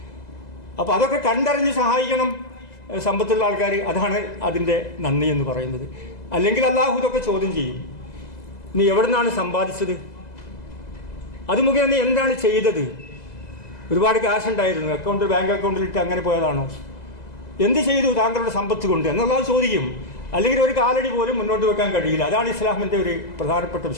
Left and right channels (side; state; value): right; late; 2.0 ms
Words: അപ്പോൾ അതൊക്കെ കണ്ടറിഞ്ഞ് സഹായിക്കണം സമ്പത്തുള്ള ആൾക്കാർ. അതാണ് അതിൻ്റെ നന്ദി എന്ന് പറയുന്നത്. അല്ലെങ്കിൽ അള്ളാഹു ഇതൊക്കെ ചോദ്യം ചെയ്യും. നീ എവിടെ നിന്നാണ് സമ്പാദിച്ചത്? അത് മുഖേന നീ എന്താണ് ചെയ്തത്? ഒരുപാട് ക്യാഷ് ഉണ്ടായിരുന്നു, ബാങ്ക് അക്കൗണ്ടിലിട്ട് അങ്ങനെ പോയതാണോ? എന്ത് ചെയ്തു താങ്കളുടെ സമ്പത്ത് കൊണ്ട് എന്നുള്ളത് ചോദിക്കും. അല്ലെങ്കിൽ ഒരു കാലടി പോലും മുന്നോട്ട് വെക്കാൻ കഴിയില്ല. അതാണ് ഇസ്ലാമിൻ്റെ ഒരു പ്രധാനപ്പെട്ട